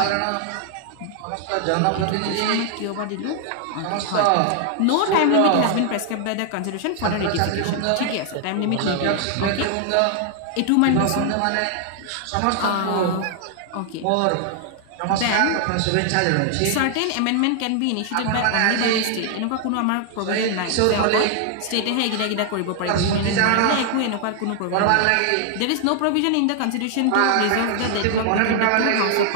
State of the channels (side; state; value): both; different; correlation 0.00